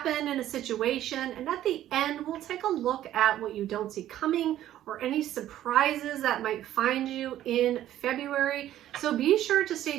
in a situation, and at the end we'll take a look at what you don't see coming or any surprises that might find you in February. So be sure to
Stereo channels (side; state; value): left; quieter; 12.7 dB